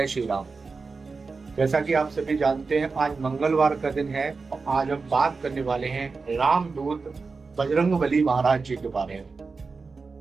श्री राम। जैसा कि आप सभी जानते हैं, आज मंगलवार का दिन है और आज हम बात करने वाले हैं रामदूत बजरंगबली महाराज जी के बारे में।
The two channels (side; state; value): left; quieter; 4.4 dB